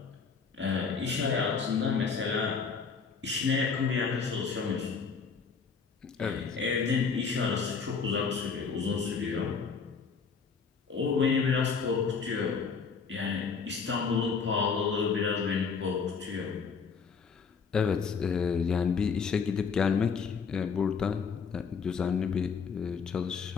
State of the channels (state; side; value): quieter; right; 5.6 dB